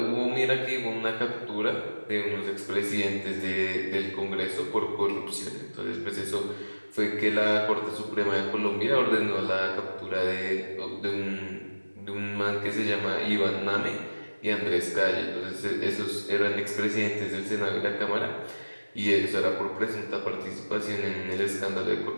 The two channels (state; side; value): inverted; both; correlation -1.00